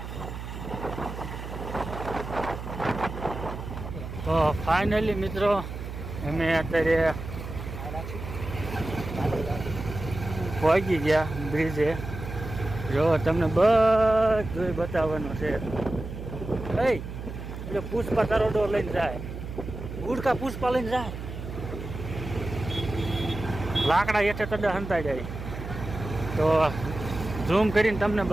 તો ફાઇનલી મિત્રો અમે અત્યારે પહોંચી ગયા બ્રિજે. જો તમને બધું બતાવવાનું છે. એટલે પુષ્પા તરોડો લઈને જાય, ઉડકા પુષ્પા લઈને જાય, લાકડા હેઠે તડા હંતાઈ જાય. તો ઝૂમ કરીને તમને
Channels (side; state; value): right; noise; hum, 9 dB below the sound